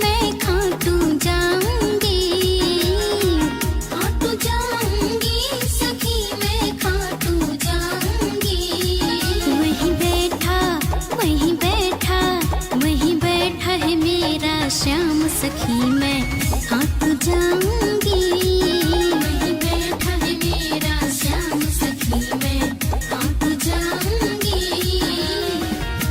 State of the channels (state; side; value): identical; both; correlation 1.00